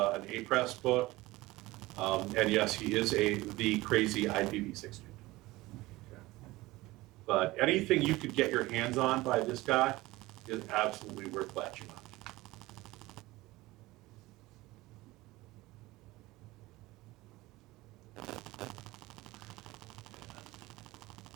A-Press book. And yes, he is the crazy IPv6 dude. Okay. But anything you could get your hands on by this guy is absolutely worth latching on to.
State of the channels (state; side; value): quieter; left; 19.4 dB